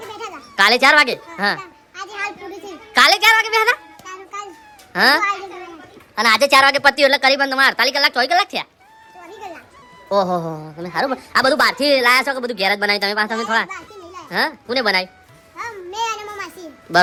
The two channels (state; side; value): identical; both; correlation 1.00